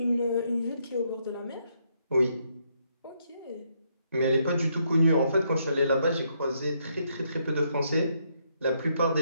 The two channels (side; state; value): both; inverted; correlation -0.75